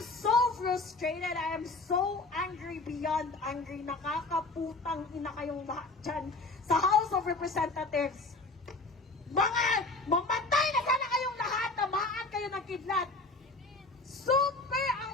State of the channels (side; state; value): right; quieter; 3.2 dB